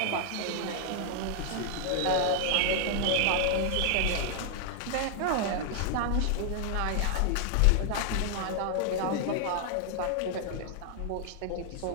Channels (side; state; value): both; different; correlation 0.00